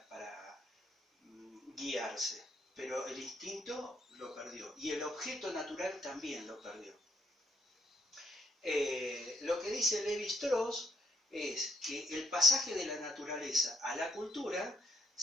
guiarse, pero el instinto lo perdió y el objeto natural también lo perdió. Lo que dice Lévi-Strauss es que el pasaje de la naturaleza a la cultura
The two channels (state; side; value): normal; both; correlation 0.72